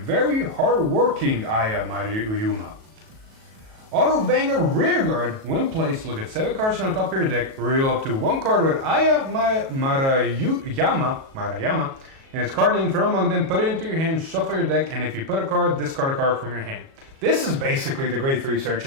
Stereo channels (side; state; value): left; late; 37 ms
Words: Very hard-working Aya Maruyama. Auto Vanguard Rearguard, when placed, look at 7 cards on the top of your deck, reveal up to 1 card with Aya Maruyama, and its card name from among them, put it into your hand, shuffle your deck, and if you put a card, discard a card from your hand. This is basically the grade 3